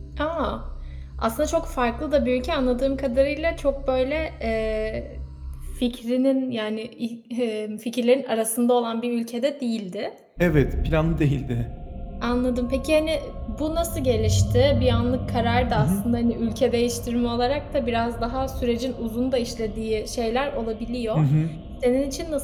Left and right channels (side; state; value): both; identical; correlation 1.00